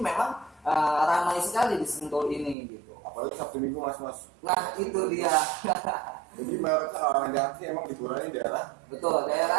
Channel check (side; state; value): left; drops out; at 2.6 s